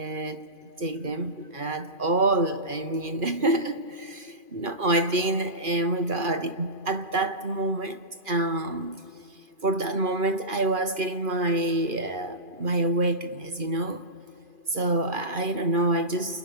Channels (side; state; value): left; late; 2.4 ms